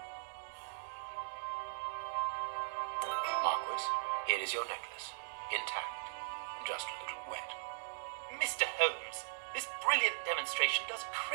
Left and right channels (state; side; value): silent; left; digital silence